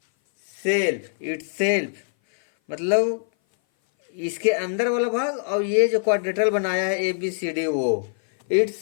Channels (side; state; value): right; silent; 58 dB below the other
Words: मतलब इसके अंदर वाला भाग और ये जो क्वाड्रिलेटरल बनाया है ए बी सी डी, वो